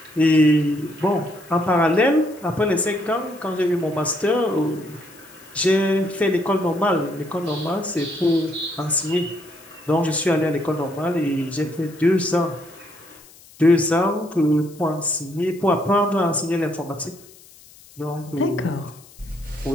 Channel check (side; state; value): left; noise; hiss, 24 dB below the sound